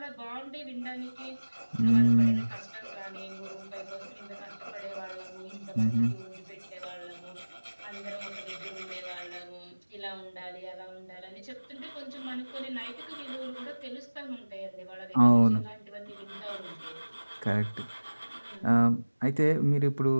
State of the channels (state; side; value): inverted; both; correlation -1.00